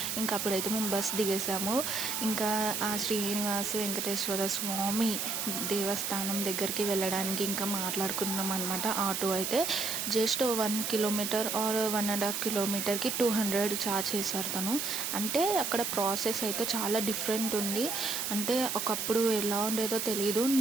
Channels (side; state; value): right; noise; hiss, 2 dB below the sound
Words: ఇంకా అప్పుడైతే మేము బస్ దిగేసాము. ఇంకా ఆ శ్రీనివాస వెంకటేశ్వర స్వామి దేవస్థానం దగ్గరికి వెళ్ళడానికి ఇంకా మాట్లాడుకున్నాం అనమాట. ఆటో అయితే జస్ట్ 1 కిలోమీటర్ ఆర్ 1.5 కిలోమీటర్కి 200 ఛార్జ్ చేశారు తను. అంటే అక్కడ ప్రాసెస్ అయితే చాలా డిఫరెంట్ ఉంది. అంటే ఒకప్పుడు ఎలా ఉండేదో తెలియదు.